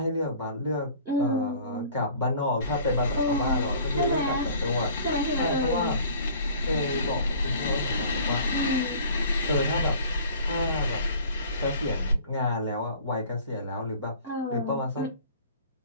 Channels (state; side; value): inverted; both; correlation -0.48